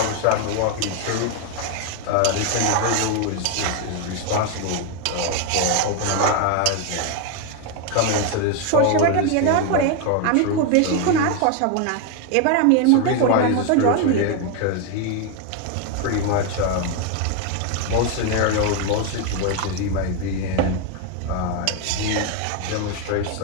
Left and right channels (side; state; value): both; different; correlation 0.01